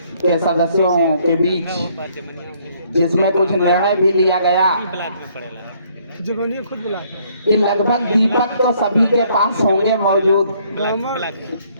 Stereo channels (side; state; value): both; inverted; correlation -0.65